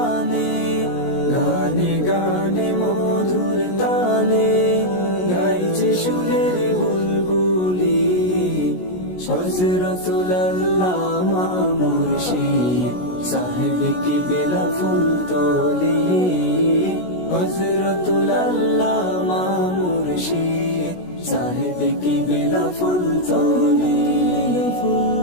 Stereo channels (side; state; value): right; late; 16 ms